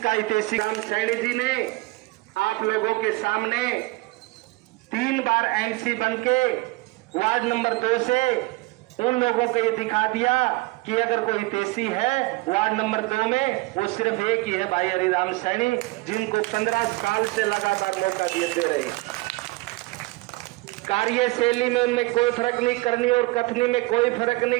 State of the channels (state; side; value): quieter; left; 22.8 dB